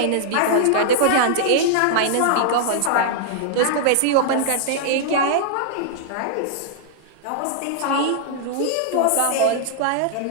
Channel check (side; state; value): both; different; correlation -0.01